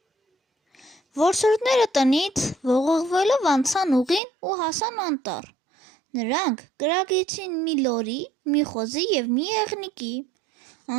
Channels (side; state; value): left; drops out; at 4.2 s